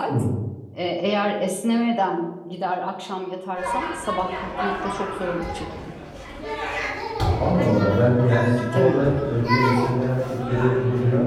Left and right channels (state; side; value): identical; both; correlation 1.00